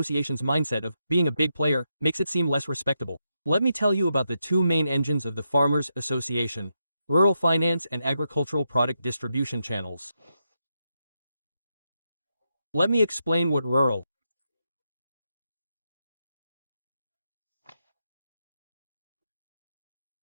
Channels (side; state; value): both; inverted; correlation -0.84